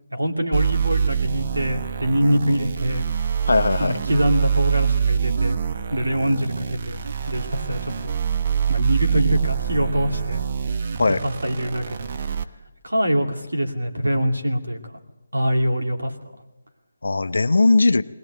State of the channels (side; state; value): both; inverted; correlation -0.88